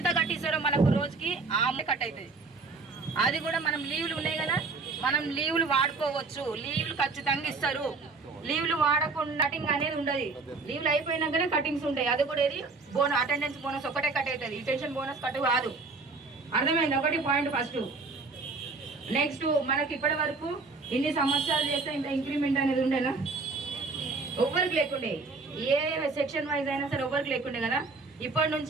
కట్టిస్తారో మనకు రోజుకి ఆ కట్ అవుతుంది. అది కూడా మనం లీవ్లు ఉన్నాయి కదా, మనం లీవ్లు వాడుకోవచ్చు, లీవ్లు ఖచ్చితంగా ఇస్తారు. లీవ్లు వాడకుండా కటింగ్ అనేది ఉండదు, లీవ్లు అయిపోయినాకనే కటింగ్స్ ఉంటాయి. అది కూడా ఏది అటెండెన్స్ బోనస్ ఒకటే కట్ అవుతుంది, రిటెన్షన్ బోనస్ కట్ కాదు. అర్థమైంది ఒకటి పాయింట్ ఫస్ట్. నెక్స్ట్ మనకి ఇప్పటి వరకు ఇన్ని సంవత్సరాలు చేస్తే ఇంత ఇంక్రిమెంట్ అనేది ఉండేనా, ఎవరికి లేకుండే, ఏ సెక్షన్ వైజ్ అయినా సరే ఎవరికి లేకుండే కదా. ఇప్పటి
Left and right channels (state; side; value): quieter; left; 4.0 dB